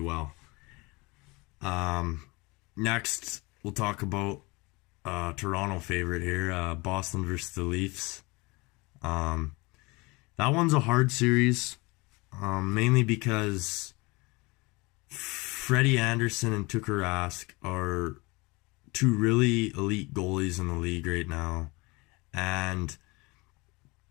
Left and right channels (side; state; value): right; quieter; 25.3 dB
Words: Next, we'll talk about Toronto favorite here, Boston versus the Leafs. That one's a hard series, mainly because Freddie Anderson and Tuukka Rask are two really elite goalies in the league right now, and